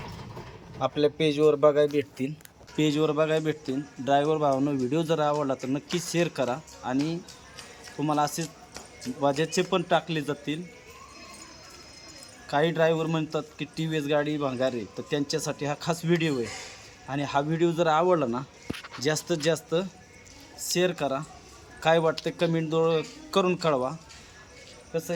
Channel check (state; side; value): identical; both; correlation 1.00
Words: आपल्या पेजवर बघायला भेटतील. ड्रायव्हर भावांनो, व्हिडिओ जर आवडला तर नक्की शेअर करा. आणि तुम्हाला असेच वाजेचे पण टाकले जातील. काही ड्रायव्हर म्हणतात की TVS गाडी भंगार आहे, तर त्यांच्यासाठी हा खास व्हिडिओ आहे. आणि हा व्हिडिओ जर आवडला ना, जास्तीत जास्त शेअर करा. काय वाटतं कमेंट करून कळवा. कसं